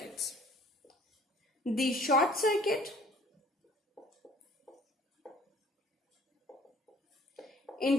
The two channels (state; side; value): normal; both; correlation 0.54